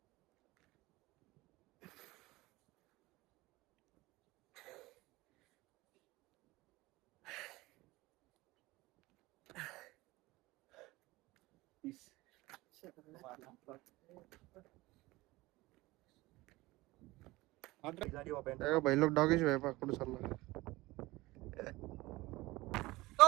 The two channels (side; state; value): left; quieter; 20.2 dB